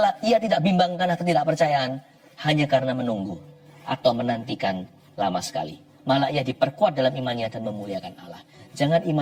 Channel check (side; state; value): both; identical; correlation 1.00